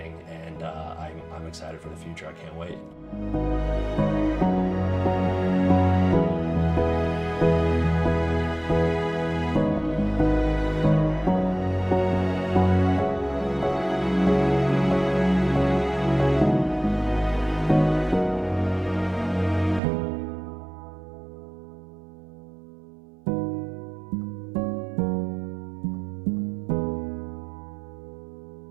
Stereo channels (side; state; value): left; drops out; at 19.8 s